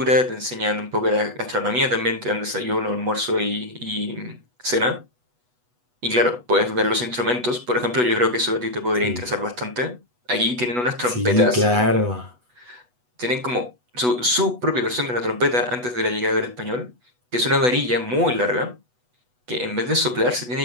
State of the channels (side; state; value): left; late; 8.1 ms